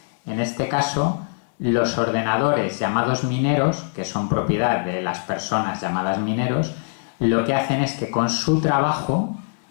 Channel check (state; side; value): silent; right; digital silence